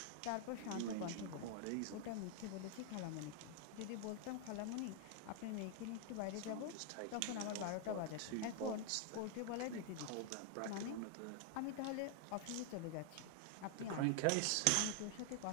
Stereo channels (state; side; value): different; both; correlation 0.00